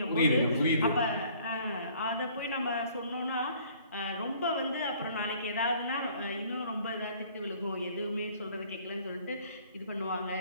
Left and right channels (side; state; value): both; inverted; correlation -0.56